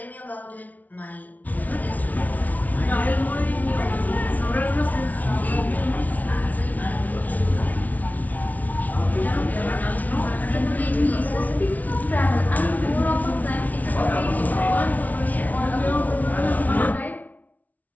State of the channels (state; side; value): late; right; 0.074 ms